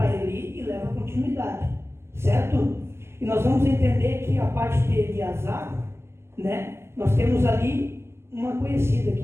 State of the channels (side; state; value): left; late; 0.12 ms